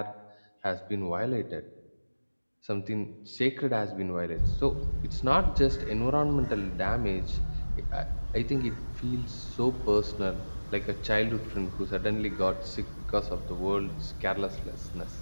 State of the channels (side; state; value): both; inverted; correlation -1.00